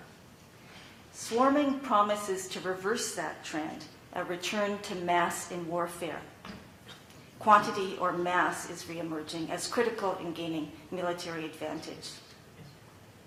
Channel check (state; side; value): identical; both; correlation 1.00